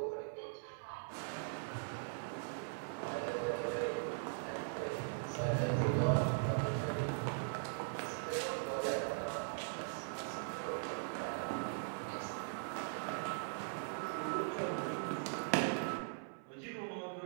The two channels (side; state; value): left; silent; 51 dB below the other